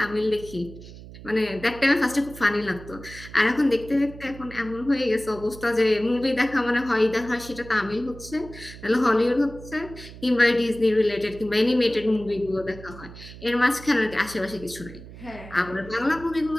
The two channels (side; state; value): right; noise; hum, 16 dB below the sound